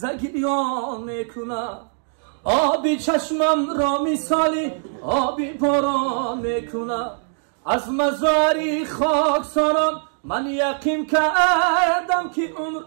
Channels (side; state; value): left; silent; digital silence